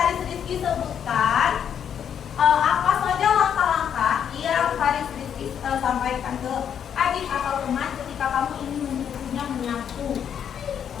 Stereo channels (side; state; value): right; quieter; 8.5 dB